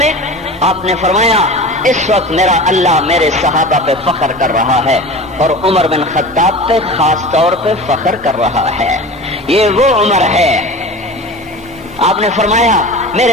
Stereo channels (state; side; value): normal; both; correlation 0.34